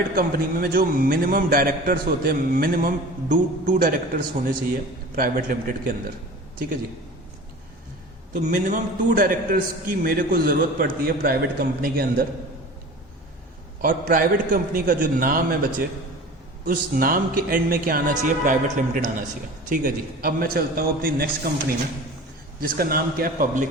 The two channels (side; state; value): both; normal; correlation 0.38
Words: कंपनी में जो मिनिमम डायरेक्टर्स होते हैं, मिनिमम 2 डायरेक्टर्स होने चाहिए प्राइवेट लिमिटेड के अंदर। ठीक है जी। तो मिनिमम 2 डायरेक्टर्स की मेरे को जरूरत पड़ती है प्राइवेट कंपनी के अंदर। और प्राइवेट कंपनी का जो नाम है बच्चे, उस नाम के एंड में क्या आना चाहिए? प्राइवेट लिमिटेड आना चाहिए। ठीक है जी। अब मैं चलता हूं अपनी नेक्स्ट कंपनी में, जिसका नाम क्या है? Public